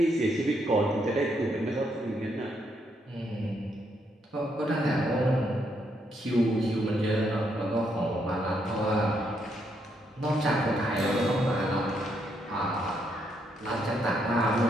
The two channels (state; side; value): normal; both; correlation 0.76